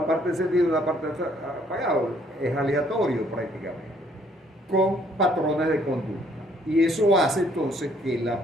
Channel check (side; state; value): both; normal; correlation 0.64